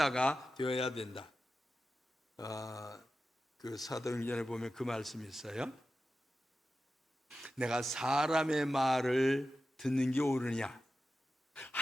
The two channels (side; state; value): both; normal; correlation 0.92